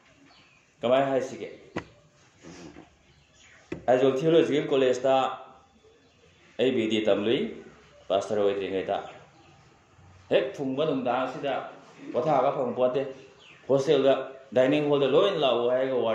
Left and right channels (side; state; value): both; identical; correlation 1.00